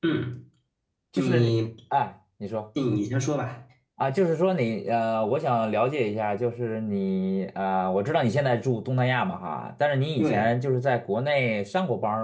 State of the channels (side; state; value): both; identical; correlation 1.00